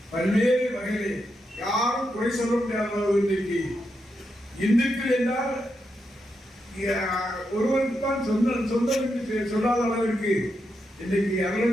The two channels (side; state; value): both; normal; correlation 0.84